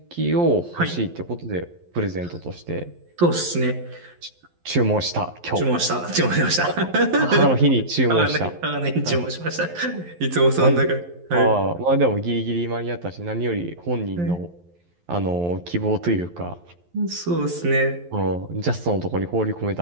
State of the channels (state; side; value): late; left; 11 ms